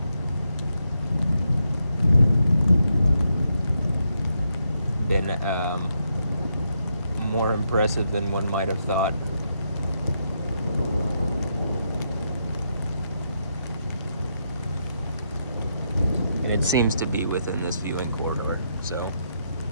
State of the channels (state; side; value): inverted; both; correlation -0.80